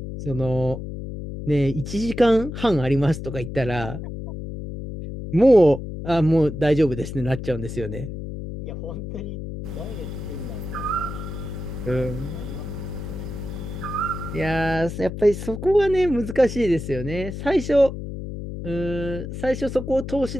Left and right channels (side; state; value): left; noise; hum, 7 dB below the sound